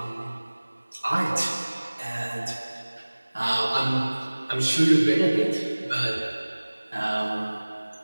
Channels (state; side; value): inverted; both; correlation -1.00